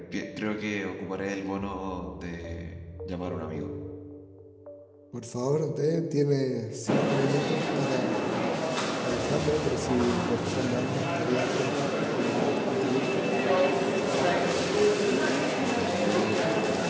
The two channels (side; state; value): both; identical; correlation 1.00